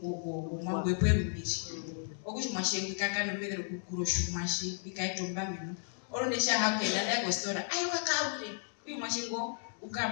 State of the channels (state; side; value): silent; right; digital silence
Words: bwerubiri okuchi mashengi kakano bedero kukuroshu mashi ikaitomba mino oronde sha hakela ndago stora ayo kakaure uyu mashengo